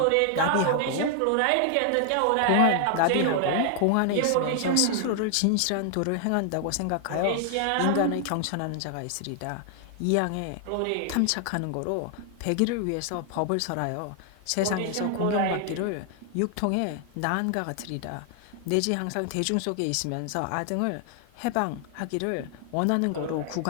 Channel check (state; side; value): different; both; correlation 0.00